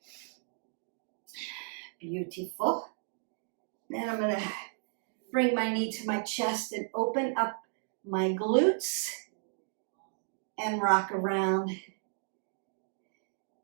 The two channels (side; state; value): left; silent; digital silence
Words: Beautiful. Then I'm going to bring my knee to my chest and open up my glutes and rock around